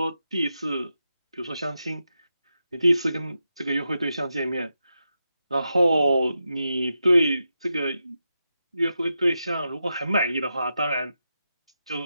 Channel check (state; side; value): inverted; both; correlation -0.88